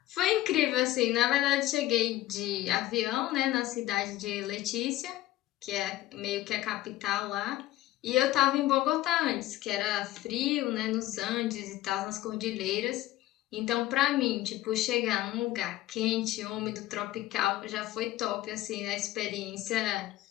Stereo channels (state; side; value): quieter; right; 15.6 dB